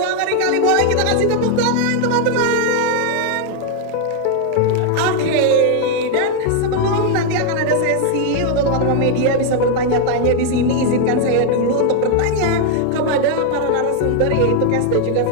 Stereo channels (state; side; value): different; both; correlation 0.00